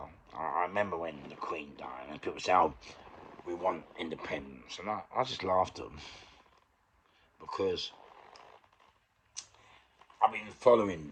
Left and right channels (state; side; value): identical; both; correlation 1.00